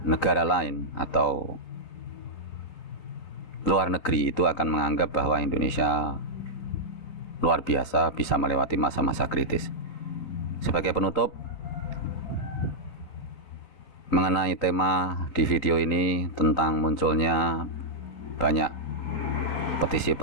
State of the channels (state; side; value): late; right; 3.9 ms